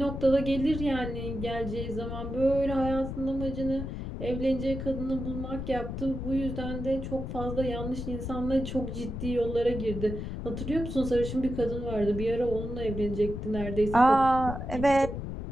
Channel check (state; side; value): noise; left; rumble, 6 dB below the sound